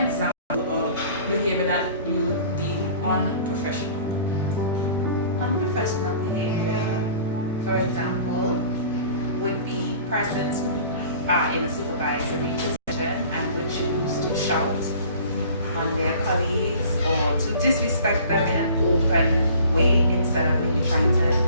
example of behavior that you deem unprofessional. Unprofessional behavior, for example, would be persons who are in a supervisory position and would choose to shout on their colleagues or to disrespect them in an open way instead of maybe trying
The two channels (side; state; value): both; inverted; correlation -0.48